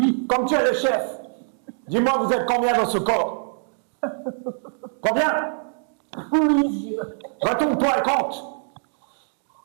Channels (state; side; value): silent; left; digital silence